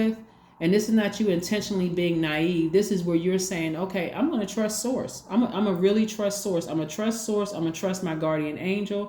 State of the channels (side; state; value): both; identical; correlation 1.00